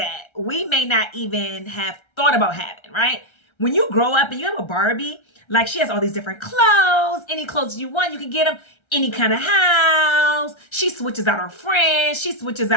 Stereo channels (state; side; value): late; right; 1.3 ms